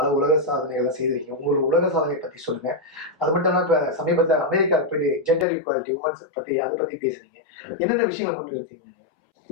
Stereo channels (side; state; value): right; drops out; at 5.5 s